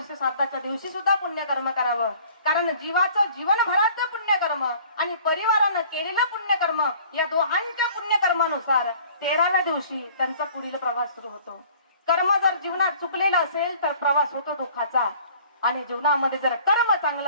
दिवशी सुद्धा पुण्यकर्म करावं. कारण जीवाचं जीवनभराचं पुण्यकर्म आणि परिवारानं केलेलं पुण्यकर्म, या दोहांच्या पुण्यकर्मानुसार 13व्या दिवशी त्यांचा पुढील प्रवास सुरू होतो. कर्म जर जीवनात चुकलेलं असेल तर प्रवास होतो दुःखाचा, आणि जीवनामध्ये जर कर्म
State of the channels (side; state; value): both; inverted; correlation -0.51